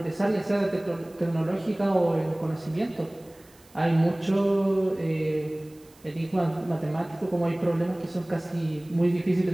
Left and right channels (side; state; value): right; noise; hiss, 28 dB below the sound